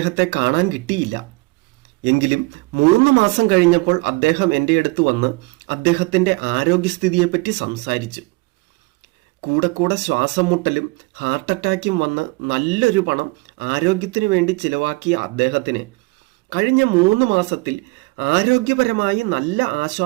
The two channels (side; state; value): left; quieter; 25.5 dB